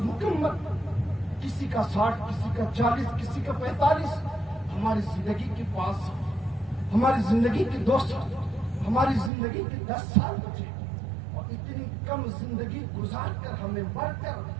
مکمل، کسی کا 60، کسی کا 40، کسی کا 45۔ ہماری زندگی کے پاس، ہماری زندگی کے 2 سال، ہماری زندگی کے 10 سال بچے، اور اتنی کم زندگی گزار کر ہمیں مر کر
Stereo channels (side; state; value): left; drops out; at 9.3 s